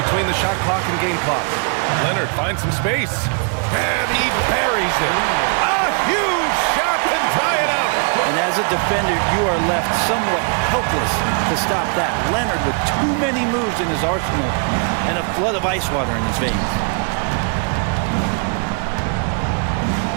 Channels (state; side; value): quieter; left; 39.3 dB